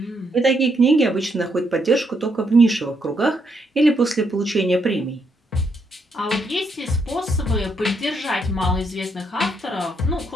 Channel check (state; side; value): normal; both; correlation 0.76